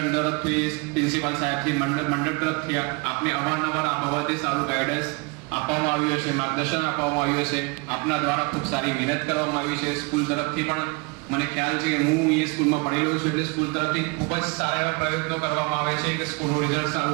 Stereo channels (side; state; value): left; quieter; 29.7 dB